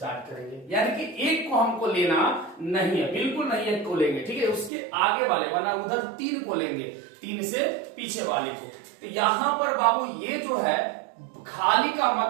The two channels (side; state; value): left; drops out; at 4.7 s